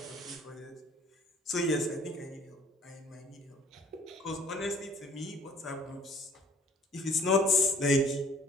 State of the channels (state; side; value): normal; both; correlation 0.56